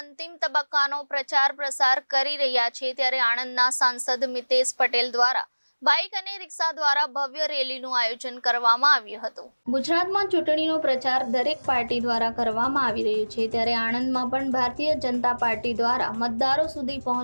તબક્કાનો પ્રચાર પ્રસાર કરી રહ્યા છે ત્યારે આણંદના સાંસદ મિતેશ પટેલ દ્વારા બાઇક અને રિક્ષા દ્વારા ભવ્ય રેલીનું આયોજન કરવામાં આવ્યું હતું। ગુજરાતમાં ચૂંટણીનો પ્રચાર દરેક પાર્ટી દ્વારા કરવામાં આવી રહ્યો છે ત્યારે આણંદમાં પણ ભારતીય જનતા પાર્ટી દ્વારા મતદારો સુધી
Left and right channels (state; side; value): inverted; both; correlation -1.00